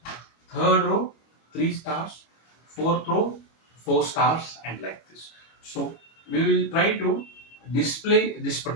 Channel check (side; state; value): right; late; 25 ms